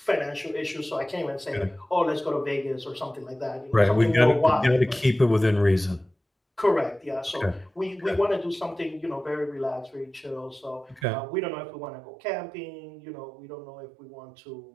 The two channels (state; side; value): drops out; left; at 11.1 s